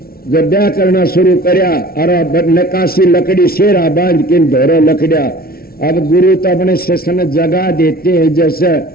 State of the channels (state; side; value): late; right; 0.44 ms